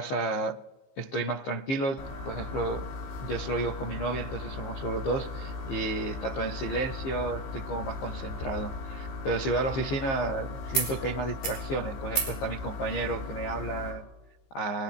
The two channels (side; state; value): right; late; 15 ms